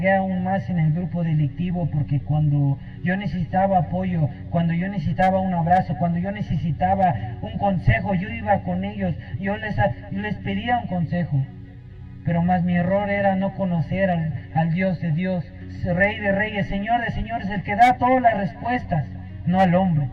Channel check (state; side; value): identical; both; correlation 1.00